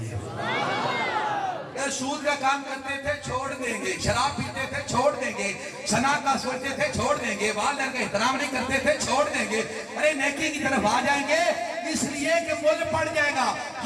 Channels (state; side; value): identical; both; correlation 1.00